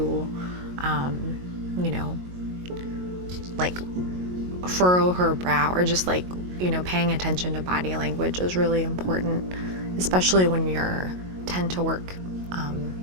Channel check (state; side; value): late; left; 22 ms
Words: like furrow her brow or just like, paying attention to body language is really important, especially when you're tend to work